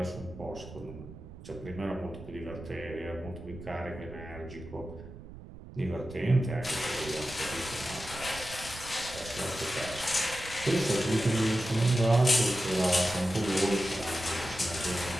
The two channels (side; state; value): right; noise; rumble, 15 dB below the sound